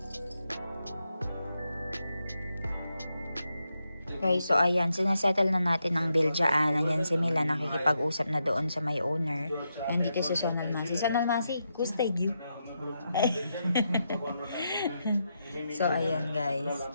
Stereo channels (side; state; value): both; inverted; correlation -0.84